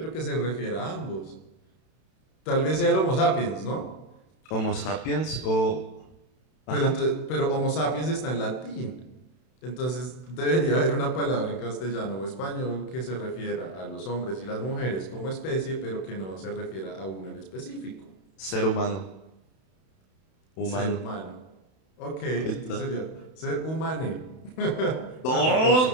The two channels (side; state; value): right; late; 32 ms